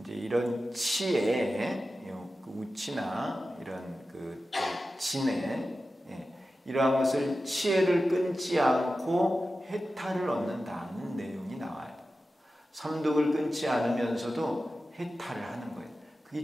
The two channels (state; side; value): normal; both; correlation 0.93